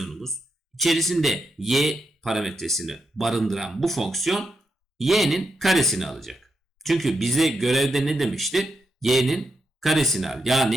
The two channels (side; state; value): both; normal; correlation 0.83